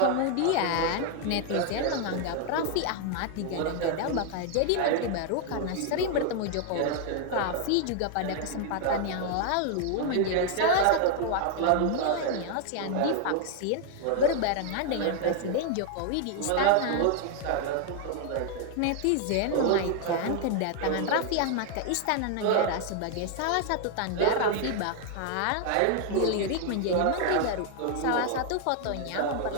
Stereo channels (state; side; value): different; both; correlation 0.00